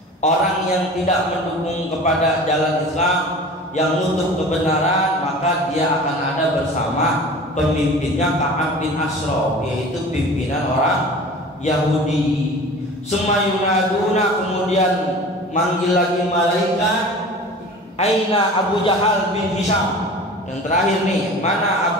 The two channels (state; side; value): normal; both; correlation 0.39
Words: orang yang tidak mendukung kepada jalan Islam, yang nutup kebenaran, maka dia akan ada bersama pemimpinnya Ka'ab bin Ashraf, yaitu pimpinan orang Yahudi. Sumayunaduna, kemudian manggil lagi malaikat, aina Abu Jahal bin Hisham. Yang terakhir nih, mana